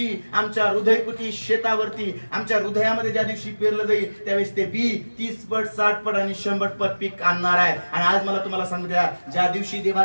आमच्या हृदयकुटी शेतावरती आमच्या हृदयामध्ये ज्या दिवशी पेरलं जाईल त्यावेळेस ते बी 30 पट 60 पट आणि 100 पट पीक आणणार आहे. आणि आज मला तुम्हाला सांगू द्या, ज्या दिवशी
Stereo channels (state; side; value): inverted; both; correlation -1.00